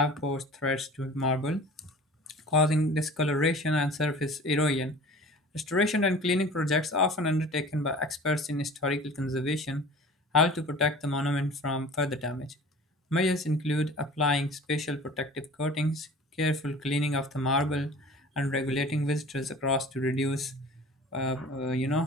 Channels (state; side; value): normal; both; correlation 0.42